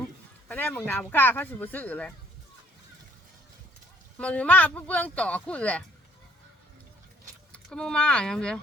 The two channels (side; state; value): both; normal; correlation 0.59